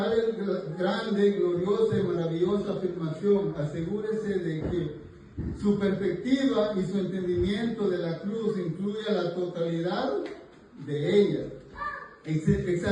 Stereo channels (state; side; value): identical; both; correlation 1.00